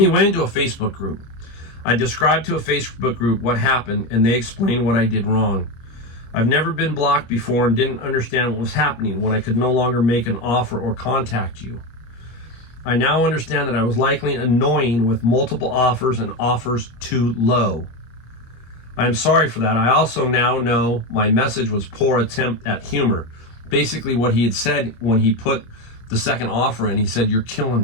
He went into a Facebook group. I described to a Facebook group what happened, and they explained what I did wrong. I've never been blocked before and didn't understand what was happening when I could no longer make an offer or contact you. I now understand that I was likely annoying with multiple offers and offers too low. I am sorry for that. I also now know my message was poor attempt at humor. Basically what he had said when he put the second offer in, he said, "You're killing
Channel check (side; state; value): right; late; 25 ms